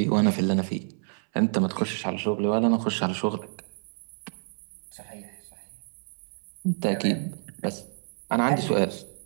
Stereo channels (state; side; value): silent; left; 59 dB below the other